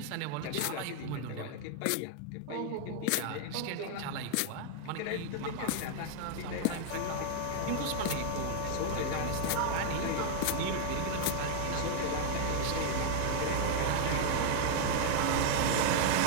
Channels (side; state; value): both; different; correlation 0.00